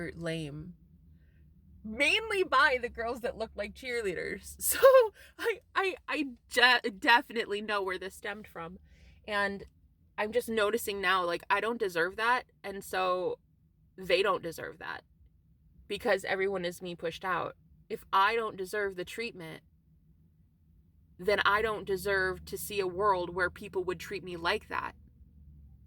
lame. Mainly by the girls that looked like cheerleaders. So I definitely know where this stemmed from. And I'm just noticing now, like, I don't deserve that. And so they don't deserve that because everyone is me pushed out. If I don't deserve the treatment, then I don't deserve to see a world where people would treat me like that.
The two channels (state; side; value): identical; both; correlation 1.00